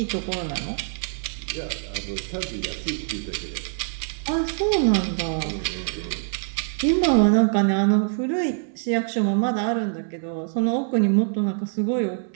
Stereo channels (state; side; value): silent; left; 61 dB below the other